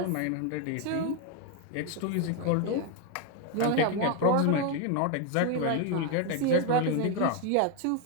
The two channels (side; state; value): both; different; correlation 0.01